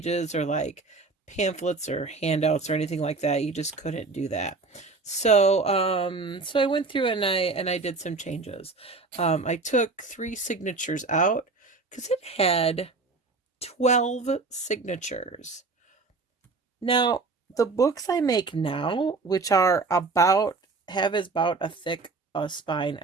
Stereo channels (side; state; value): left; quieter; 3.8 dB